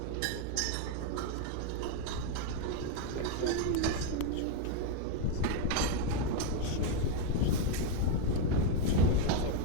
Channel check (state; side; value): different; both; correlation 0.01